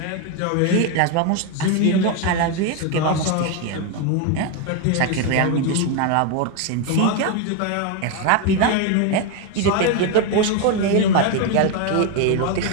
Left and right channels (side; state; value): both; different; correlation 0.01